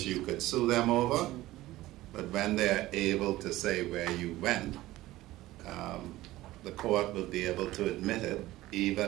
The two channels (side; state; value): left; quieter; 16.9 dB